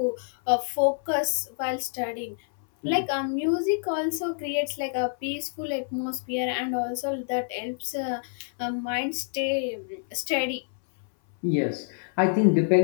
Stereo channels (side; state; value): right; silent; 58 dB below the other